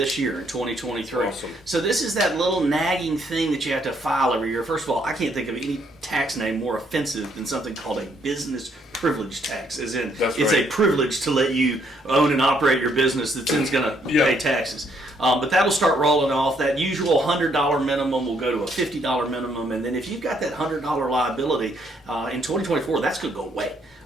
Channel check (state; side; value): normal; both; correlation 0.70